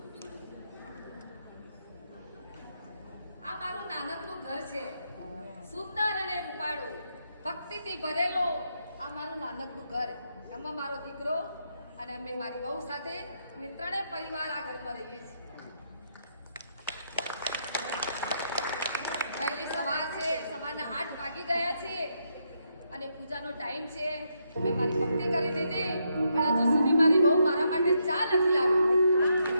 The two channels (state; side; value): inverted; both; correlation -0.79